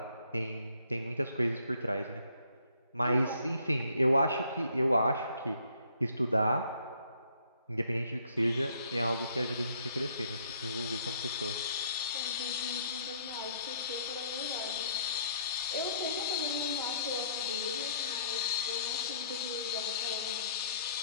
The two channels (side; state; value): both; inverted; correlation -0.63